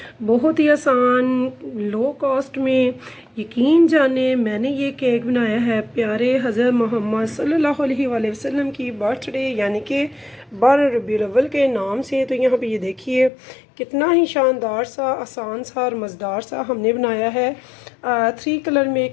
बहुत ही आसान लो कॉस्ट में। यकीन जाने मैंने ये केक बनाया है प्यारे हज़रत मोहम्मद सल्लल्लाहु अलैहि वसल्लम की बर्थडे यानी कि 12 रबीउल अव्वल के नाम से। तो यहाँ पे ये देखिए कितना ही शानदार सा, आसान सा और मज़ेदार सा हमने बनाया है 3 कलर में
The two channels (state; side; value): drops out; right; at 13.3 s